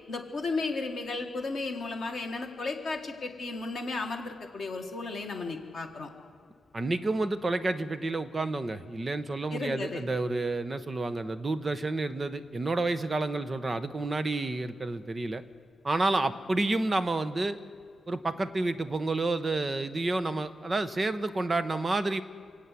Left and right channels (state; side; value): normal; both; correlation 0.90